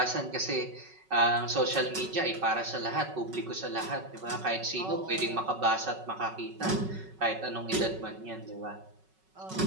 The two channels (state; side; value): late; left; 5.3 ms